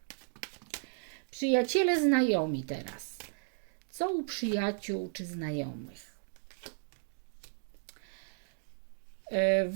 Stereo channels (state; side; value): silent; left; digital silence